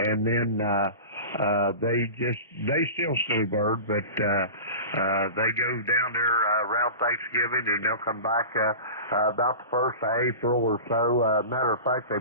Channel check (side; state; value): both; inverted; correlation -0.34